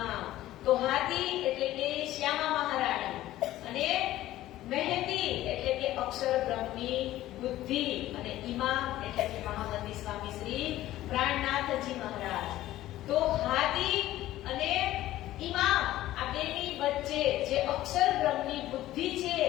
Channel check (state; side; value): quieter; right; 14.8 dB